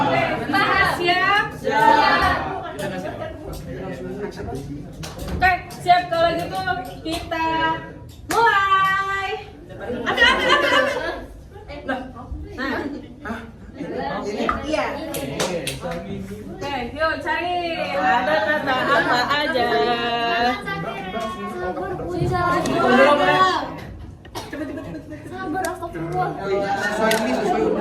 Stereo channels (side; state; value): both; identical; correlation 1.00